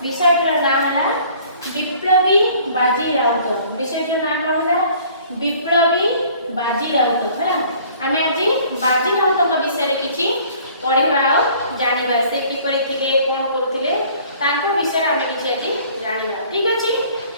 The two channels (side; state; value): both; inverted; correlation -0.54